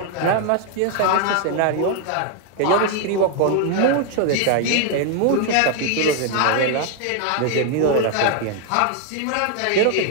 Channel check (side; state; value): both; different; correlation 0.00